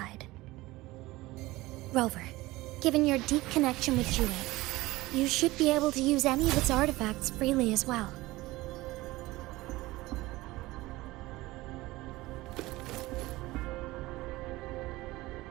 Rover, given your deep connection with Jue, you should be able to use any of its artifacts freely as well.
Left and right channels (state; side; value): quieter; left; 19.3 dB